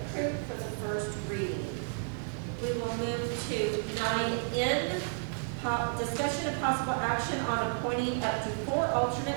for the first reading. We will move to 9N, discussion of possible action on appointing up to 4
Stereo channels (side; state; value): left; silent; digital silence